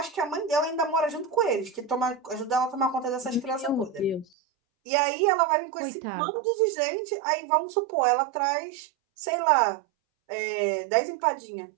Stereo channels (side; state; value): left; drops out; at 4.2 s